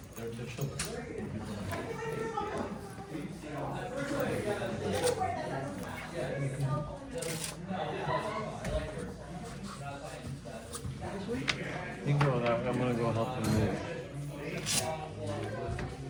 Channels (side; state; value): both; identical; correlation 1.00